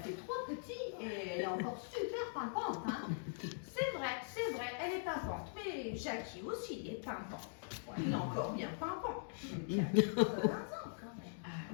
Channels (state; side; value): silent; right; digital silence